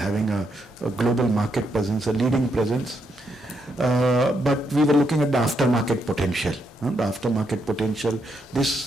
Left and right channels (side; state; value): both; normal; correlation 0.79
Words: a global market presence, a leading presence. But we were looking at the aftermarket potential. The aftermarket potential,